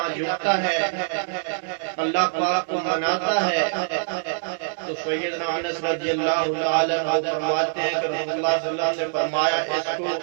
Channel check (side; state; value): left; silent; 62 dB below the other